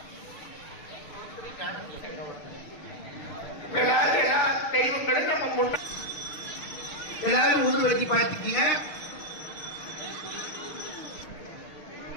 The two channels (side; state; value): right; late; 6.4 ms